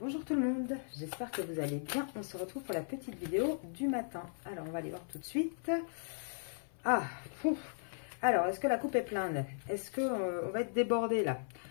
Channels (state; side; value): silent; right; 53 dB below the other